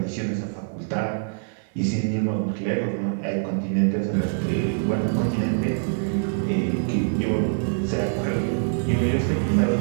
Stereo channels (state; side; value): silent; left; 59 dB below the other